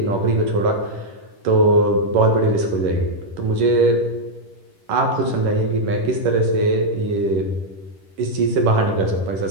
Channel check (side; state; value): left; late; 10 ms